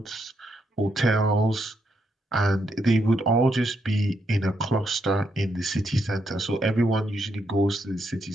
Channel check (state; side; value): normal; both; correlation 0.79